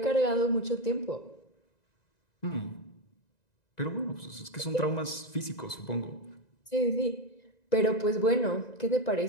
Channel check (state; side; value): late; right; 1.9 ms